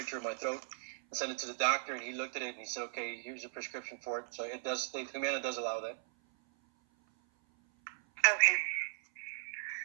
of my throat and sent it to the doctor, and he looked at it and he said, okay, here's a prescription for it. So Humana does allow that. Okay.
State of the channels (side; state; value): left; silent; 53 dB below the other